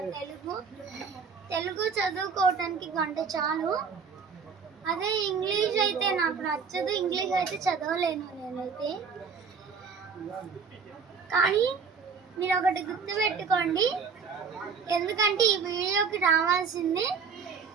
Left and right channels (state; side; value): quieter; left; 5.8 dB